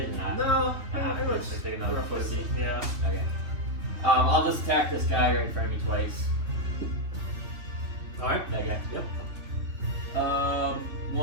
Or not? No, It looks like another pussy. Yeah. Okay. I'll just attack this guy right in front of me twice. All right. That guy. Yep.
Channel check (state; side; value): late; left; 3.3 ms